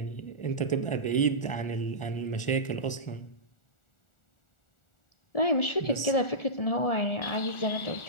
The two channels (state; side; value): late; right; 1.4 ms